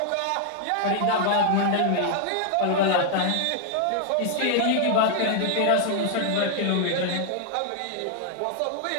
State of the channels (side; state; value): both; different; correlation 0.00